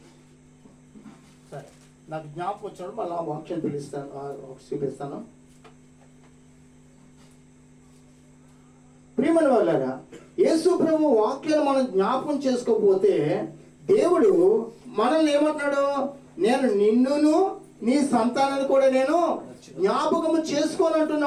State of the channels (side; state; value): both; identical; correlation 1.00